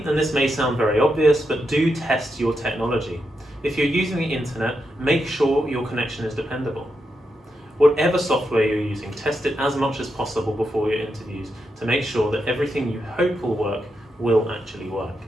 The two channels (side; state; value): both; normal; correlation 0.85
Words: and this may sound very obvious, but do test your technology. If you're using the internet, make sure your connection is dependable. Whatever software you're using, test it as much as possible before your interviews to make sure that everything you hope will work will actually work.